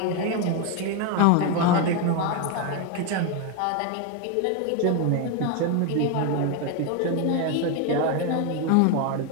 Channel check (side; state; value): both; different; correlation 0.02